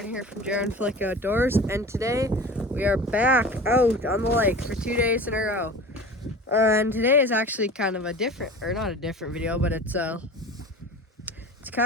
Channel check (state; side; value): normal; both; correlation 0.36